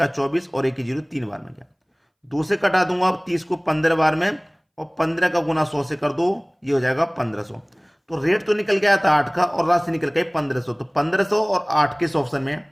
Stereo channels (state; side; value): identical; both; correlation 1.00